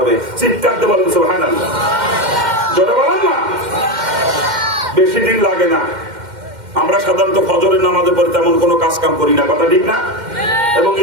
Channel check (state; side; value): late; left; 2.1 ms